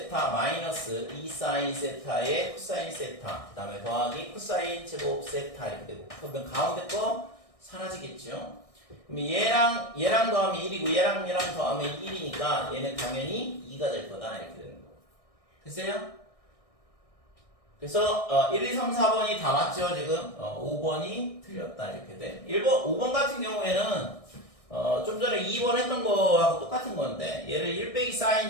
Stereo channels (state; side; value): late; right; 1.6 ms